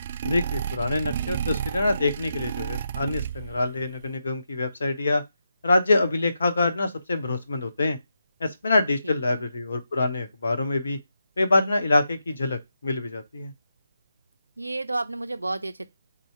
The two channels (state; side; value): inverted; both; correlation -0.85